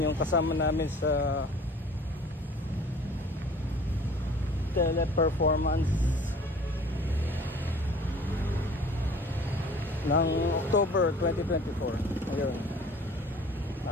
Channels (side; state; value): both; normal; correlation 0.49